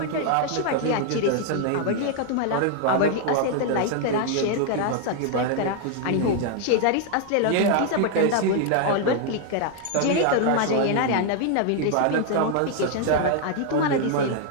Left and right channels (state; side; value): different; both; correlation 0.00